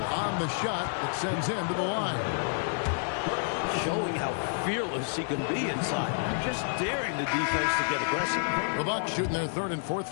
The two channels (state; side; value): silent; right; digital silence